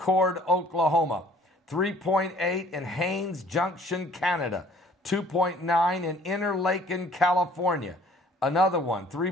Oklahoma, 3.8 in Haines Junction, Canada, 2.9 in Interlaken, California. Another one,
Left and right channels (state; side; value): normal; both; correlation 0.55